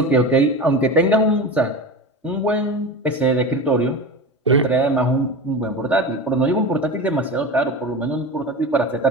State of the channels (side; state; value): both; normal; correlation 0.27